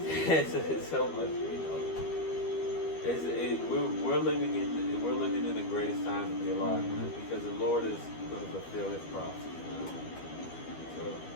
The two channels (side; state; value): right; late; 12 ms